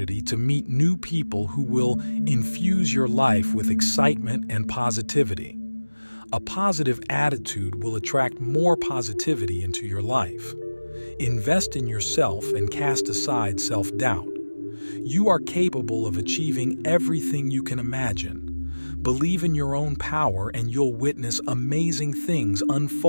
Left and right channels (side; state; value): both; inverted; correlation -1.00